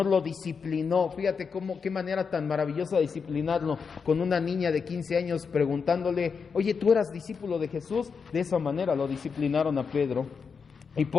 lo disciplinó. Fíjate qué manera tan maravillosa de disciplinarlo, con una niña de 15 años preguntándole, oye, ¿tú eras discípulo de Jesús? De esa manera lo disciplinaron a Pedro. Y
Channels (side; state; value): right; quieter; 5.7 dB